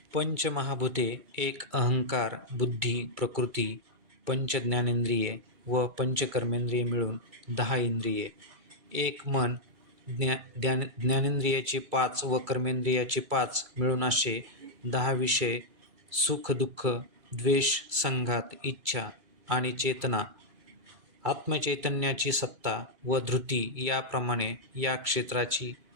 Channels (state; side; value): late; left; 2.3 ms